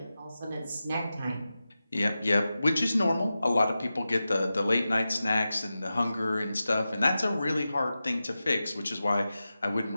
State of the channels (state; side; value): inverted; both; correlation -0.93